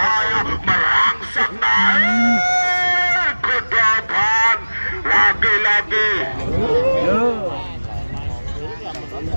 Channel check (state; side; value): inverted; both; correlation -1.00